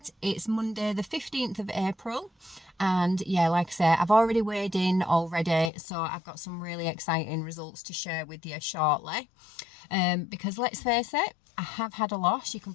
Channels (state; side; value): drops out; right; at 5.7 s